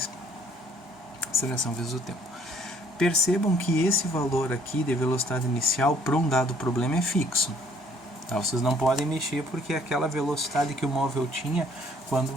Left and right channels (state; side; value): normal; both; correlation 0.61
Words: a aceleração vezes o tempo. Percebam que esse valor aqui de velocidade inicial para um dado problema é fixo. Vocês não podem mexer porque é aquela velocidade que o móvel tinha quando